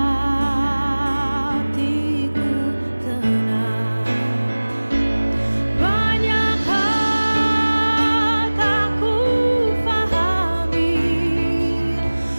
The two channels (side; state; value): both; inverted; correlation -1.00